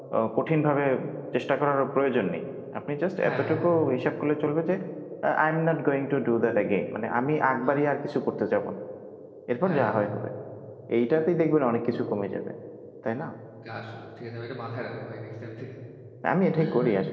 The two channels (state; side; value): identical; both; correlation 1.00